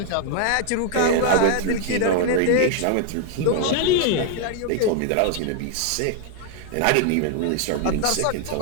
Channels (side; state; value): both; different; correlation 0.00